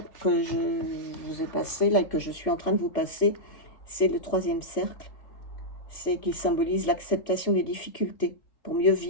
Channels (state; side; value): late; right; 3.8 ms